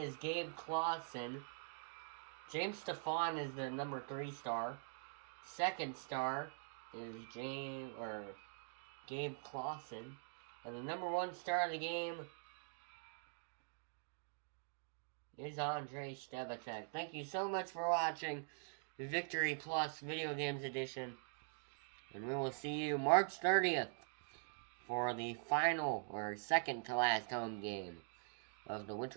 Gabe Clausen. James Stefan is the number 3 star. Second star is Gabe Clausen. And the number 1 star of the game is Andrei Stebacek. Thank you so much for watching the Victory Plus Video Games Edition. And we will see you March 30th for the final, or second to last home game of the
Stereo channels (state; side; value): silent; left; digital silence